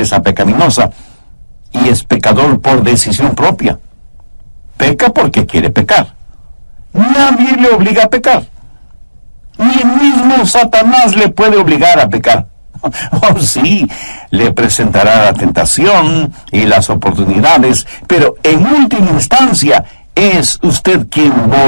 pecaminosa y es pecador por decisión propia. Peca porque quiere pecar. Nadie le obliga a pecar. Ni el mismo Satanás le puede obligar a pecar. Oh, sí, le presentará la tentación y las oportunidades, pero en última instancia es usted quien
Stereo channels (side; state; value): both; inverted; correlation -1.00